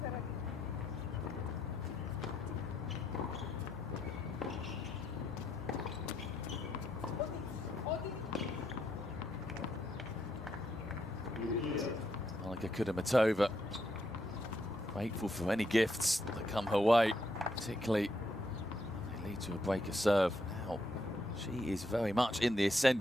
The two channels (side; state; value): both; normal; correlation 0.77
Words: Kudermetova, grateful for any gifts that come her way, particularly if they lead to a break of serve. Now, she is very much in the